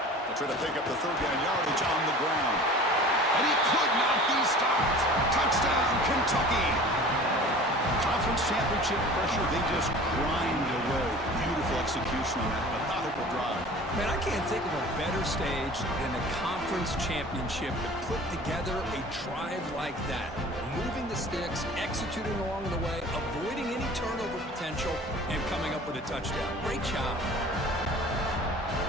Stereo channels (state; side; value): normal; both; correlation 0.43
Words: They'll try to pick up the 3rd down yardage on the ground. And he could not be stopped. Touchdown, Kentucky. Conference championship pressure, they just grind away. Beautiful execution on that methodical drive. Man, I can't think of a better stage than the conference championship to put together a drive like that. Moving the sticks, executing along the way, avoiding any turnover potential, and coming up with a touchdown. Great job.